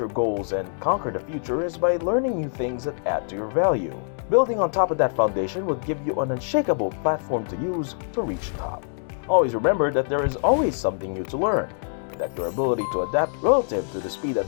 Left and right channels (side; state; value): right; silent; digital silence